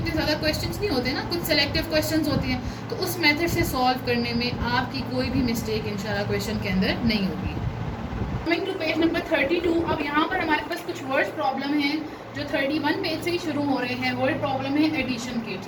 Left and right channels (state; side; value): identical; both; correlation 1.00